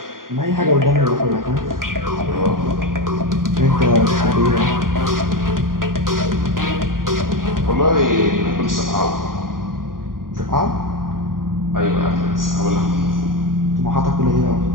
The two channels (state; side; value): late; left; 0.91 ms